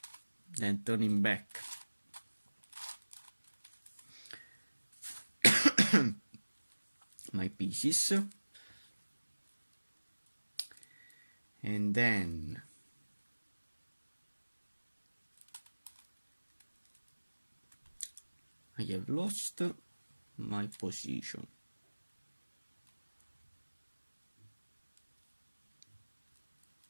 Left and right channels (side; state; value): both; inverted; correlation -1.00